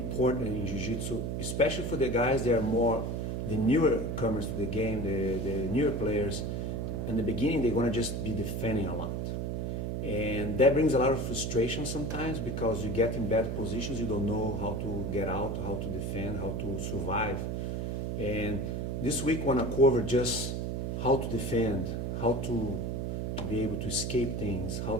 in Jiu-Jitsu, especially for the guys that are more the newer comers to the game, the newer players. In the beginning, they're going to just be defending a lot. And that brings a lot of frustration sometimes because you get in bad positions, you don't know how to get out, how to defend, how to survive. And this week I want to cover just how to defend, how to be able to escape things, how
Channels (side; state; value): right; noise; hum, 2 dB below the sound